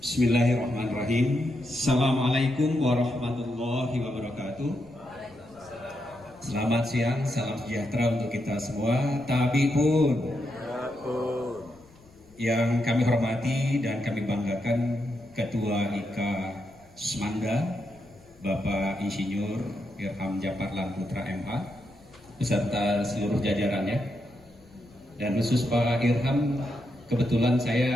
Bismillahirrahmanirrahim. Assalamualaikum warahmatullahi wabarakatuh. Selamat siang, salam sejahtera untuk kita semua. Tabi pun yang kami hormati dan kami banggakan Ketua IKA Semanda, Bapak Insinyur Irham Japar Putra MH, beserta seluruh jajarannya. Dan khusus Pak Irham, kebetulan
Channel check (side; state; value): left; noise; rumble, 27 dB below the sound